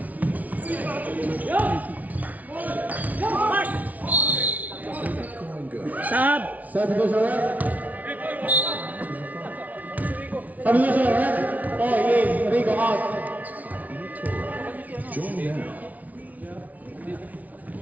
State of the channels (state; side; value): late; left; 0.073 ms